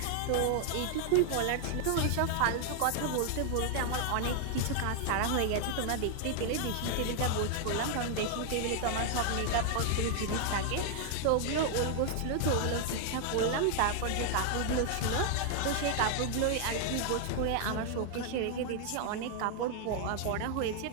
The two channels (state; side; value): different; both; correlation 0.00